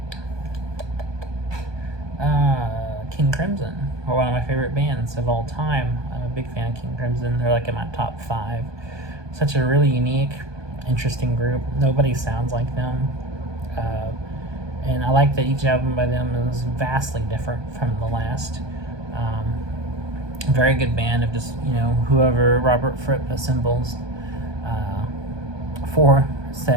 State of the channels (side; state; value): left; late; 1.2 ms